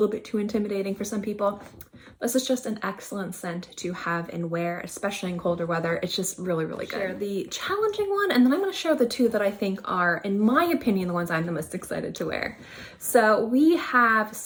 bit too intimidating for some people, this is just an excellent scent to have and wear, especially in colder weather. It's just really, really good. Share the challenging one, and then I'm going to share the two that I think are, in my opinion, the ones I'm the most excited to wear. So we have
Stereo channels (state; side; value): identical; both; correlation 1.00